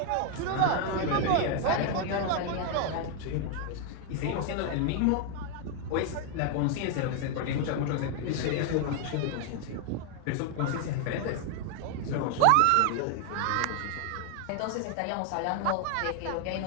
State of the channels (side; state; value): both; different; correlation 0.01